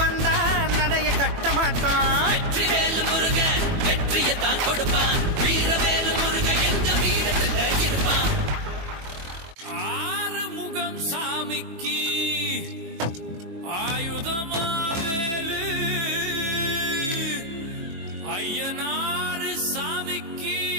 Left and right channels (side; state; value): left; late; 21 ms